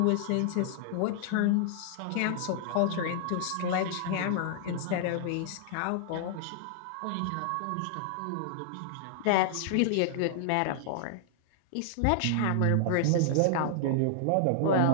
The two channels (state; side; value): different; both; correlation -0.01